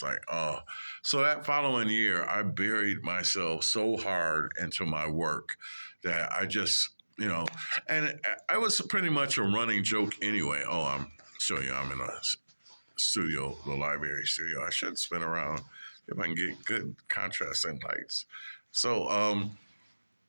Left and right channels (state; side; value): inverted; both; correlation -1.00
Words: like, oh. So that following year, I buried myself so hard into my work that I just, and I was pretty much a running joke anyway. Oh, I'm showing you, I'm in a studio, the library studio. I should spin around if I can get good contrasting lights. So